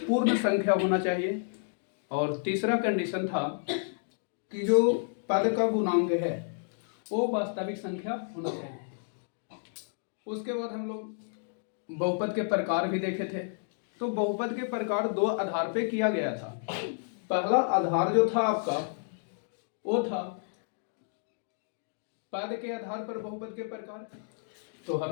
पूर्ण संख्या होना चाहिए। और तीसरा कंडीशन था कि जो पद का गुणांक है वो वास्तविक संख्या होना चाहिए। उसके बाद हम लोग बहुपद के प्रकार भी देखे थे। तो बहुपद के प्रकार 2 आधार पे किया गया था। पहला आधार जो था आपका वो था पद के आधार पर बहुपद के प्रकार। तो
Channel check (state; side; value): silent; right; digital silence